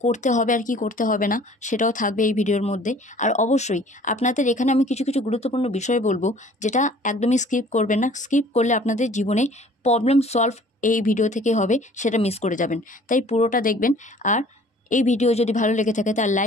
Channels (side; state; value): both; normal; correlation 0.52